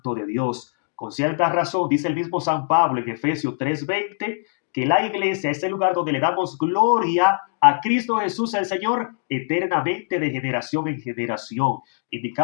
de Dios. Con cierta razón, dice el mismo San Pablo en Efesios 3:20, que la iglesia es el lugar donde le damos gloria a Cristo Jesús el Señor eternamente de generación en generación,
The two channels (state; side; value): silent; right; 64 dB below the other